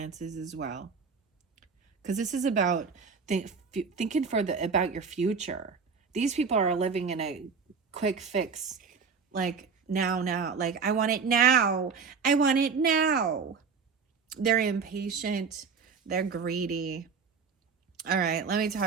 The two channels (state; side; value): quieter; left; 5.5 dB